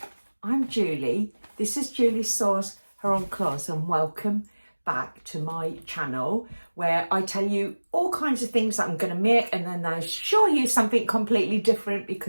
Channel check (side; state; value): both; inverted; correlation -1.00